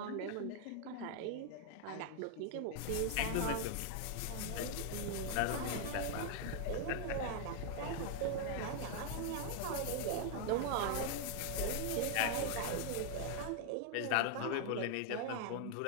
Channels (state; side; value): different; both; correlation 0.00